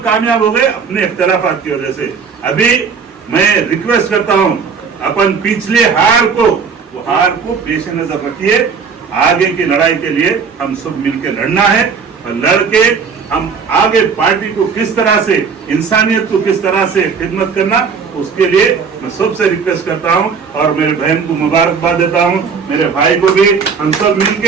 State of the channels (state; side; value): quieter; left; 5.8 dB